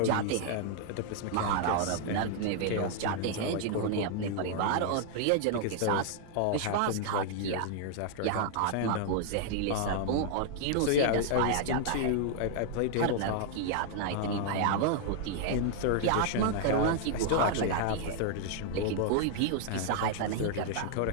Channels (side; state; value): both; different; correlation 0.00